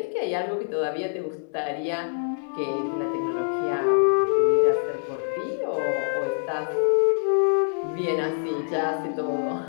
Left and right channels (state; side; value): silent; right; 62 dB below the other